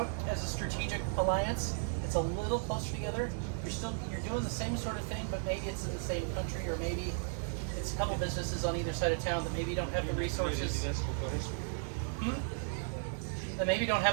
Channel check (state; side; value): silent; left; digital silence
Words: as a strategic alliance. It's a little closer together. You're doing the same sort of thing, but maybe it's in the same country, or maybe it's a couple businesses on either side of town that maybe don't have the resources. That maybe don't